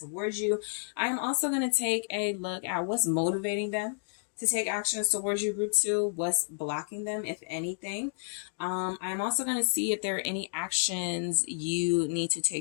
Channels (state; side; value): silent; right; digital silence